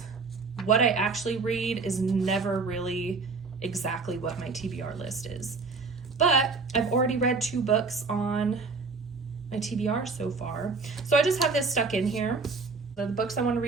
what I actually read is never really exactly what my TBR list is. But I've already read 2 books on my TBR so far. So I just have this stuck in here. The books I want to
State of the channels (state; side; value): quieter; left; 4.4 dB